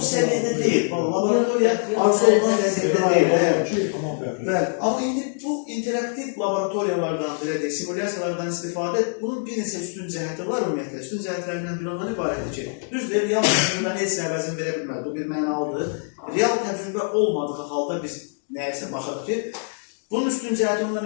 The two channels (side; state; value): right; silent; 63 dB below the other